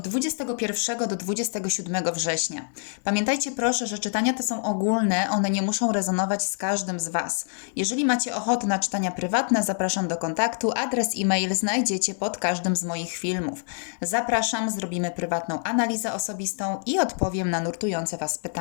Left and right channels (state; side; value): silent; right; 59 dB below the other